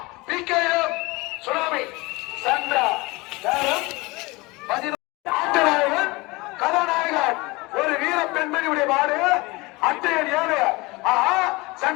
பிகேஎம் சுனாமி சந்திரா ஆட்டநாயகன் கதாநாயகன் ஒரு வீர பெண்மணியுடைய மாடு அட்டையன் 7 ஆஹா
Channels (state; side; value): quieter; right; 23.7 dB